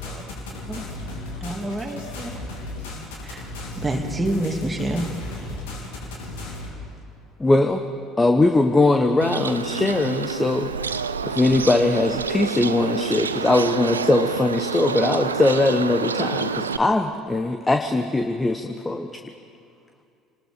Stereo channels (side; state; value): both; normal; correlation 0.72